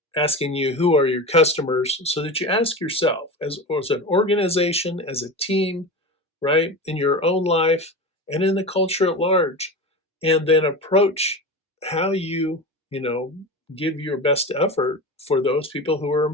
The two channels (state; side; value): normal; both; correlation 0.27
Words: asking you who are your customers so that you ask yourself as an organization, as a team, right, in your own life and in the culture at large, and then approach how you give your best effort for those people who are